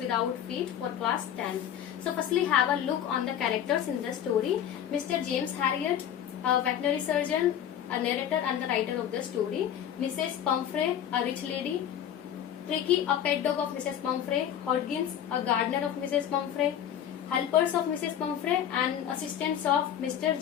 Feet for class 10th. So firstly have a look on the characters in the story. Mr. James Harriet, a veterinary surgeon, a narrator and the writer of the story. Mrs. Pumphrey, a rich lady. Tricky, a pet dog of Mrs. Pumphrey. Hodgins, a gardener of Mrs. Pumphrey. Helpers of Mrs. Pumphrey and assistants of Mr.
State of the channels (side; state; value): right; quieter; 9.9 dB